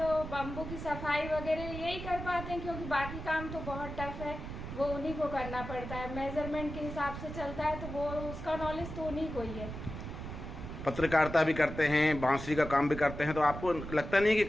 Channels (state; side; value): noise; right; rumble, 8 dB below the sound